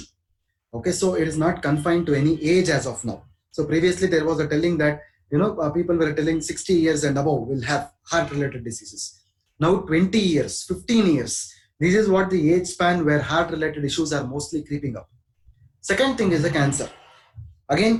Okay, so it is not confined to any age as of now. So previously there was a telling that people were telling 60 years and above will have heart related diseases. Now 20 years, 15 years, this is what the age span where heart related issues are mostly creeping up. Second thing is the cancer. Again,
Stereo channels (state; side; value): identical; both; correlation 1.00